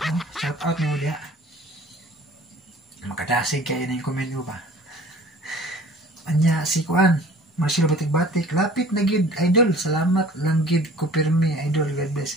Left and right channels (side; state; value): both; normal; correlation 0.48